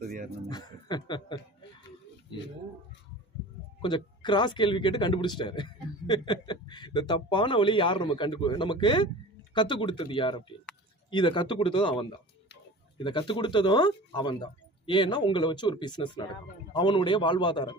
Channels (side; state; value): both; normal; correlation 0.38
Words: யார்? நமக்கு கொஞ்சம் கிராஸ் கேள்வி கேட்டு கண்டுபிடிச்சிட்டாரு. இந்த தப்பான வழி யார் நமக்கு கத்துக் கொடுத்தது யார் அப்படின்னு. இதை கத்துக் கொடுத்ததும் அவன் தான். இதை கத்துக் கொடுத்ததும் அவன் தான். ஏன்னா உங்களை வச்சு ஒரு பிசினஸ் நடக்கும், அவனுடைய வாழ்வாதாரம்